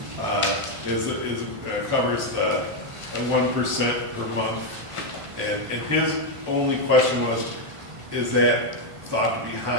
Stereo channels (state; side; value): late; left; 1.5 ms